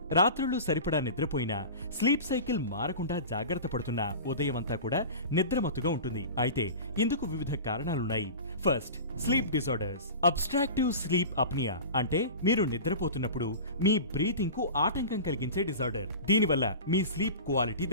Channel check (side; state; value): both; inverted; correlation -0.33